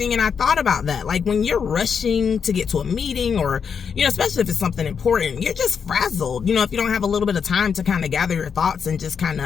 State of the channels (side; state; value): right; quieter; 6.6 dB